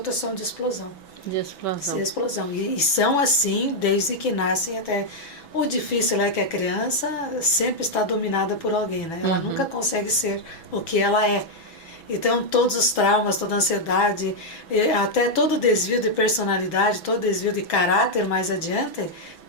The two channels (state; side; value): late; right; 6.1 ms